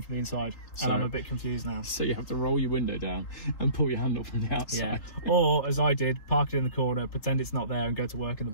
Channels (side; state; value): right; late; 3.3 ms